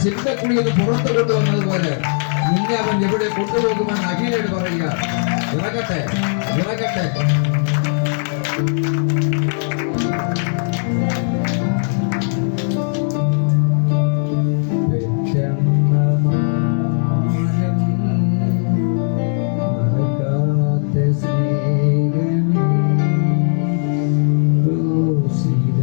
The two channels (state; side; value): silent; right; 67 dB below the other